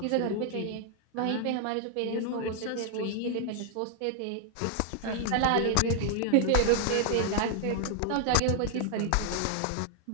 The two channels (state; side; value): different; both; correlation 0.00